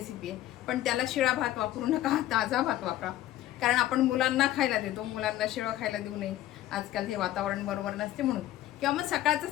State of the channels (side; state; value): right; quieter; 14.0 dB